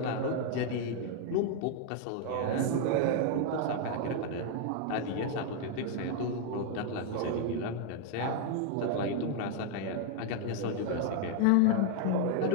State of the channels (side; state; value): both; different; correlation 0.00